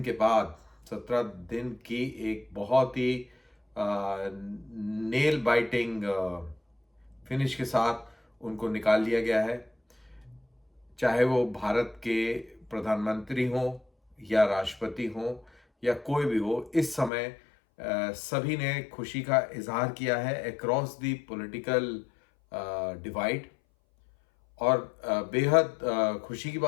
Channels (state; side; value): drops out; right; at 17.1 s